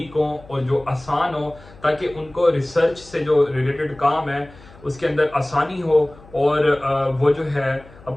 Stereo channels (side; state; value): left; noise; hum, 23 dB below the sound